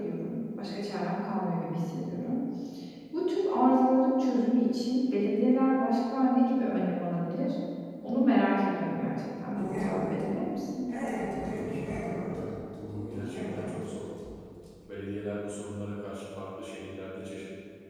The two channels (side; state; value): both; identical; correlation 1.00